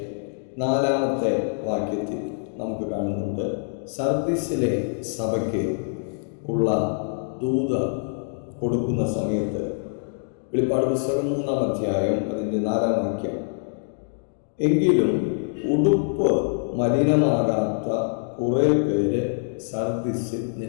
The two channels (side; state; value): right; silent; digital silence